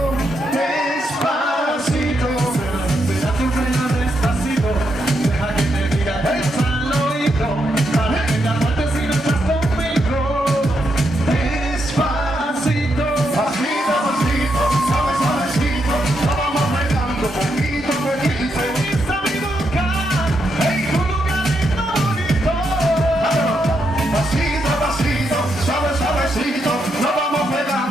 Despacito. Será tu freno despacito. Deja que te diga al oído. Para que te aguantes si no estás conmigo. Despacito. Pasito, pasito. Suave, suavecito. Lo vamos pegando poquito a poquito. Esta mi boca. Hey, tu lugarito bonito. Pasito, pasito. Suave, suavecito. Lo vamos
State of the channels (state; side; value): normal; both; correlation 0.81